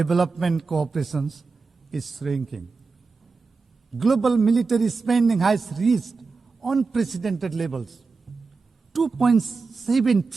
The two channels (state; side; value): quieter; left; 4.4 dB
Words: cooperation is shrinking. Global military spending has reached unprecedented levels, $2.7